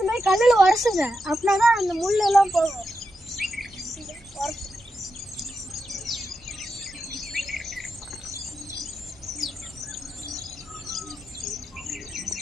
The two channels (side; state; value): both; normal; correlation 0.87